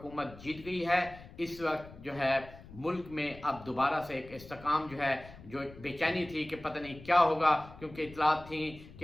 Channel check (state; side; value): noise; left; rumble, 18 dB below the sound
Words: جیت گئی ہے۔ اس وقت جو ہے ملک میں اب دوبارہ سے ایک استحکام جو ہے، جو ایک بے چینی تھی کہ پتہ نہیں کیا ہوگا، کیونکہ اطلاعات تھیں